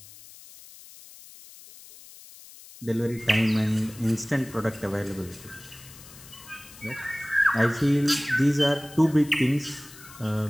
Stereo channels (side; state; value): left; noise; hiss, 19 dB below the sound